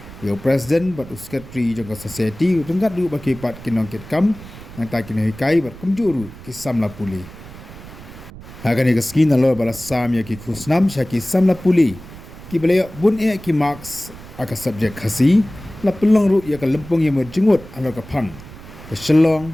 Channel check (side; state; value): right; noise; rumble, 16 dB below the sound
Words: ya president but secretary jong ka society tengkat du bakipat kinong kit kam nang ta kinoi kai ber kumjuru kisam la puli Hagan ika skin na lo bala samya ki khusnam shaki samla puli ki balaya bun e ki marks aka subject khasi la pelong ru ya ka lempung ya merjengut alo ka phang ka Shillong